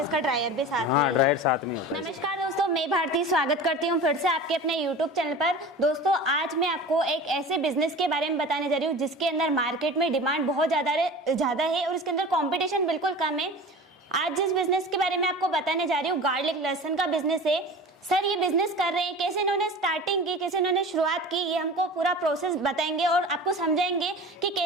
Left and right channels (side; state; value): both; normal; correlation 0.36